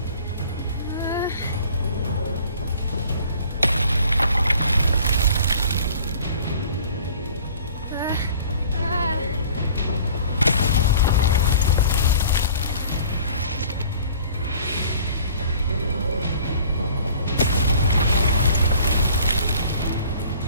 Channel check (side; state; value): both; inverted; correlation -0.49